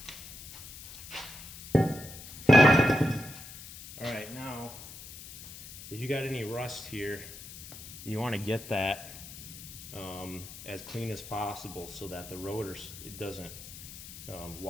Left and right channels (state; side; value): noise; left; hiss, 14 dB below the sound